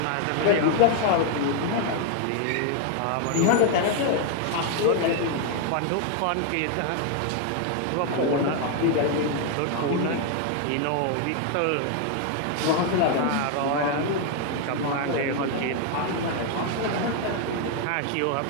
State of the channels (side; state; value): both; different; correlation 0.00